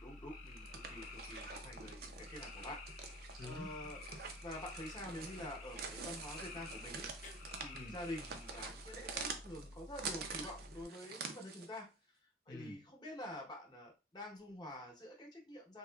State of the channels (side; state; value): both; normal; correlation 0.36